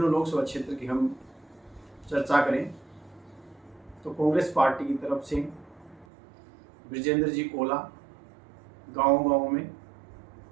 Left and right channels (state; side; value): drops out; left; at 6.1 s